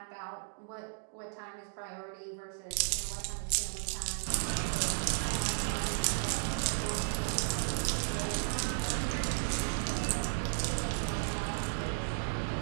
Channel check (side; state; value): left; silent; digital silence